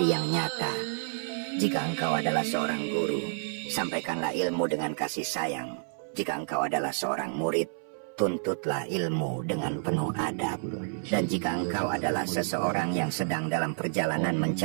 yang nyata. Jika engkau adalah seorang guru, sampaikanlah ilmu dengan kasih sayang. Jika engkau adalah seorang murid, tuntutlah ilmu dengan penuh adab. Dan jika engkau adalah seseorang yang sedang dalam perjalanan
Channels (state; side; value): silent; left; 58 dB below the other